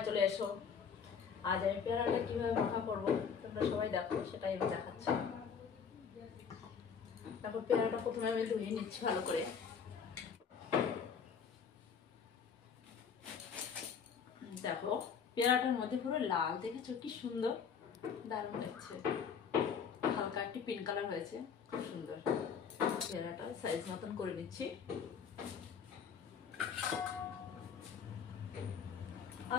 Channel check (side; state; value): right; quieter; 6.7 dB